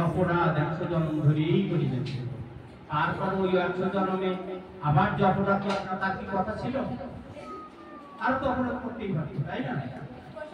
অপরাধ 100 জন্ম ধরেই করে দিচ্ছে। তারপর ওই 100 জন্মে আবার যে অপরাধ তার কি কথা ছিল? আর তো অপরাধ করতেই পারতো, তাই না?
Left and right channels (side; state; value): both; identical; correlation 1.00